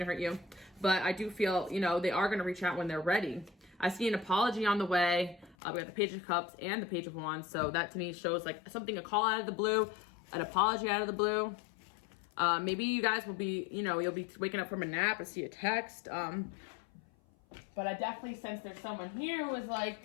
hurt you. But I do feel, they are going to reach out when they're ready. I see an apology on the way. We got the Page of Cups and the Page of Wands. So that to me shows like something, a call out of the blue, an apology out of the blue. Maybe you guys will be, you'll be waking up from a nap and see a text. But I definitely sense there's someone here who was like,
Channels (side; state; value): right; drops out; at 5.6 s